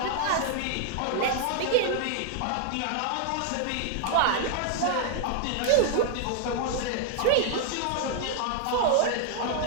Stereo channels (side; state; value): both; different; correlation 0.00